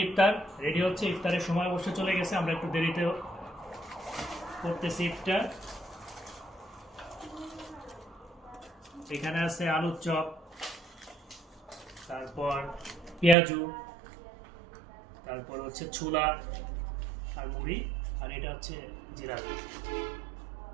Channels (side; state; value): left; drops out; at 13.4 s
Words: রেডি হচ্ছে ইফতারের সময় অবশ্য চলে গেছে আমরা একটু দেরিতে করতেছি ইফতার এখানে আছে আলুর চপ তারপর পেঁয়াজু তারপর হচ্ছে ছোলা আর মুড়ি আর এটা হচ্ছে জিলাপি